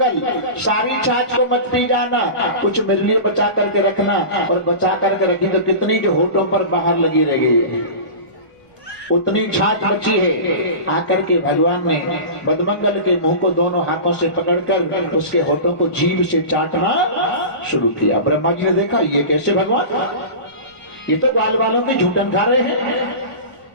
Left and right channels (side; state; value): right; late; 1.1 ms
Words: सारी छाछ को मत पी जाना, कुछ मेरे लिए बचा करके रखना। और बचा करके रखी तो कितनी जो होठों पर बाहर लगी रह गई है, उतनी छाछ बची है। आकर के भगवान ने मधुमंगल के मुंह को दोनों हाथों से पकड़कर उसके होठों को जीभ से चाटना शुरू किया। ब्रह्मा जी ने देखा, ये कैसे भगवान, ये तो ग्वाल वालों की झूठन खा रहे हैं।